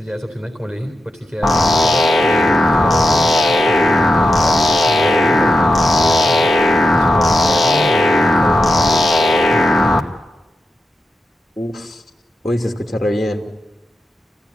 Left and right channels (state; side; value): normal; both; correlation 0.89